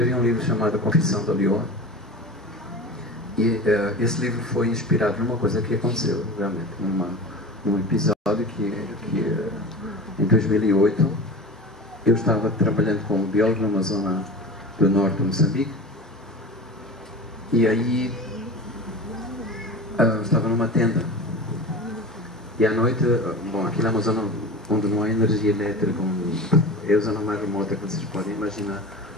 um livro chamado A Confissão da Leoa. E esse livro foi inspirado numa coisa que aconteceu, realmente, num episódio que em 2008 eu estava trabalhando como biólogo numa zona do norte de Moçambique, e aí estava numa tenda, e à noite, bom, aquilo é uma zona onde não há energia elétrica, é a zona mais remota que vocês podem imaginar,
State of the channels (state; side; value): normal; both; correlation 0.32